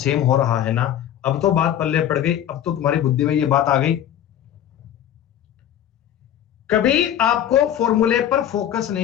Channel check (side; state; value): right; quieter; 10.8 dB